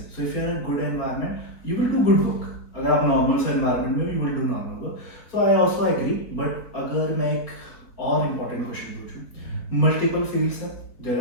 So if you are in good environment you will do good work. अगर आप नॉर्मल से एनवायरनमेंट में you will do normal work. So I also agree, but अगर मैं एक और इम्पॉर्टेंट क्वेश्चन पूछूं, मल्टीपल फील्ड्स है,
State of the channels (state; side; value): late; right; 4.2 ms